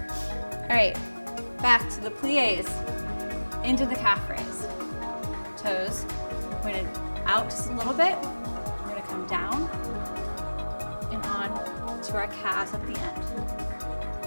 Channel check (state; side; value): inverted; both; correlation -1.00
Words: All right, back to the plies, into the calf raise. Toes pointed out just a little bit. We're gonna come down and on to our calves at the end.